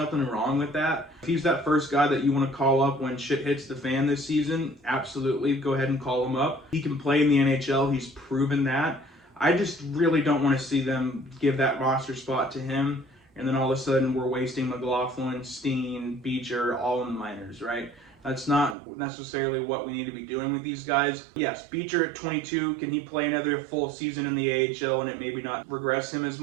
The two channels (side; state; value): left; drops out; at 18.8 s